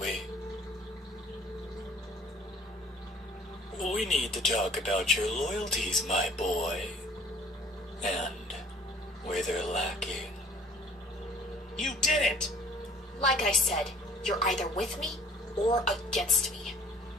We need to talk about your loyalties, my boy, and where they're lacking. You did it! Like I said, you're either with me or against me.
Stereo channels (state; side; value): normal; both; correlation 0.54